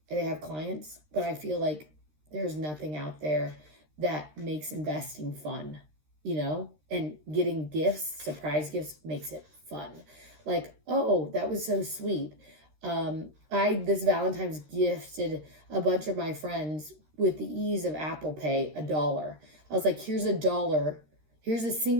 and they have clients? But I feel like there's nothing out there that makes investing fun, and getting gifts, surprise gifts, makes it fun. Like, oh, that was so sweet. I this Valentine's gifted a bunch of my friends with the ease of Apple Pay $1. I was like, here's $1. Here's a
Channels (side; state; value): left; late; 13 ms